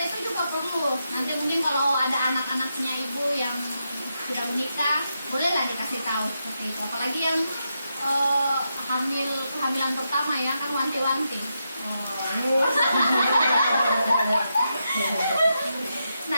itu juga perlu. Nanti mungkin kalau ada anak-anaknya ibu yang sudah menikah, bolehlah dikasih tahu seperti itu. Apalagi yang kehamilan pertama ya, kan wanti-wanti.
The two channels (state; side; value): inverted; both; correlation -0.84